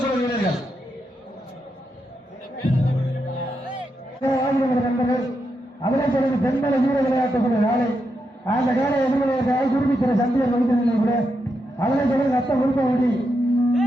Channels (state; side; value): normal; both; correlation 0.84